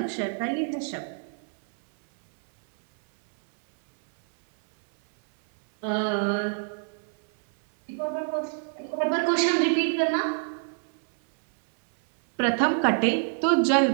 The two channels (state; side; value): silent; left; 61 dB below the other